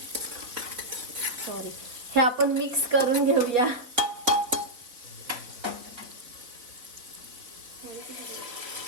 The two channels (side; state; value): left; late; 4.0 ms